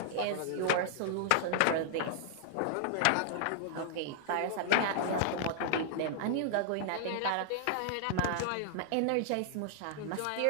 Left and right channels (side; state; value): both; different; correlation -0.01